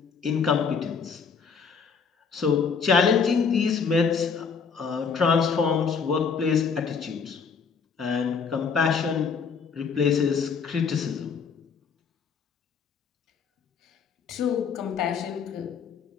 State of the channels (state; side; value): quieter; right; 5.9 dB